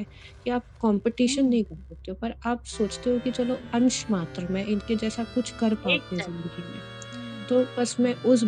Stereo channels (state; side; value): identical; both; correlation 1.00